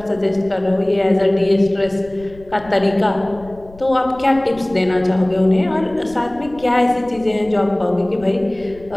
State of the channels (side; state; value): left; noise; rumble, 22 dB below the sound